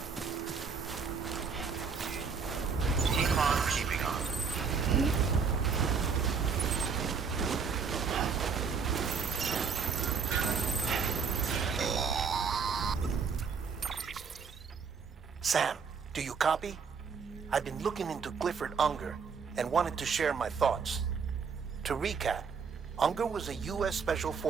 Keep on keeping on. Sam, do you copy? I've been looking into Clifford Unger and wanted to share my thoughts. To recap, Unger was a U.S. Special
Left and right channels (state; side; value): quieter; left; 5.8 dB